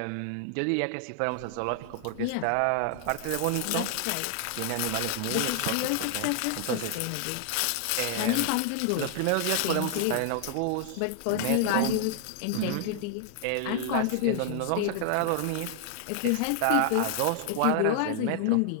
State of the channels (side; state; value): both; different; correlation 0.00